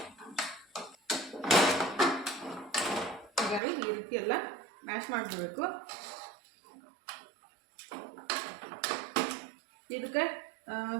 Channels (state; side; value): drops out; left; at 3.6 s